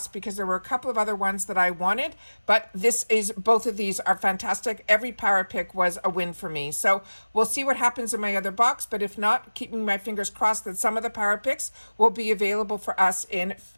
because there were a couple of other ones that I wanted, but both of these are fantastic. Every Power Pick was a win for me. So we'll see what happens in my other box, but if not, keeping my fingers crossed that some of the Power Picks will be available for us in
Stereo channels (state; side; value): inverted; both; correlation -1.00